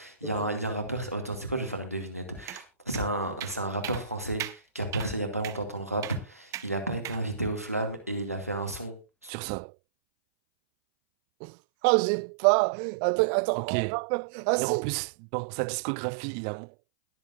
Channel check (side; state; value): left; drops out; at 9.3 s